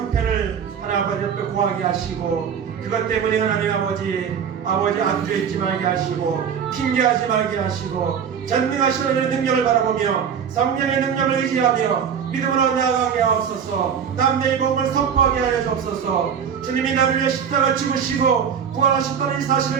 하나님 아버지 옆에 구하게 하시고 그것 때문에 하나님 아버지 안주해있지 말게 하시고 핑계하지 말게 하시고 전능하신 하나님의 능력을 바라보며 성령의 능력을 의지하며 믿음으로 나아가게 하옵소서. 남녀의 복음을 선포하게 하여 주옵소서. 주님이 나를 위해 십자가 죽으시고 부활하셨다는 이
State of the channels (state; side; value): quieter; left; 7.5 dB